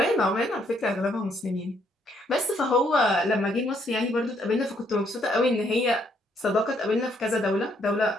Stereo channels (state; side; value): normal; both; correlation 0.70